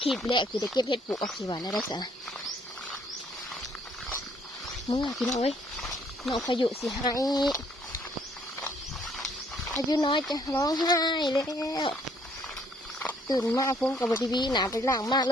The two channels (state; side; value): normal; both; correlation 0.65